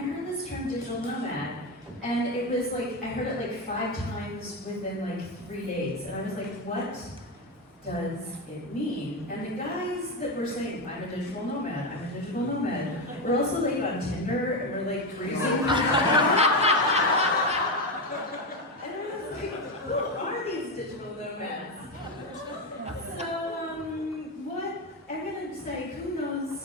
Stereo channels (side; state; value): both; normal; correlation 0.12